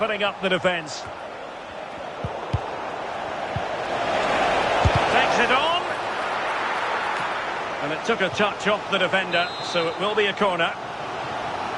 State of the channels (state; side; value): identical; both; correlation 1.00